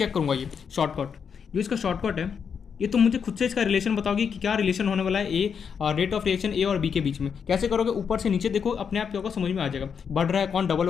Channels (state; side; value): quieter; right; 6.7 dB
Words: करूँगा ये शॉर्टकट। जो इसका शॉर्टकट है ये तुम मुझे खुद से इसका रिलेशन बताओगे कि क्या रिलेशन होने वाला है ए रेट ऑफ रिएक्शन ए और बी के बीच में। कैसे करोगे, ऊपर से नीचे देखो, अपने आप क्या होगा समझ में आ जाएगा। बढ़ रहा है कौन, डबल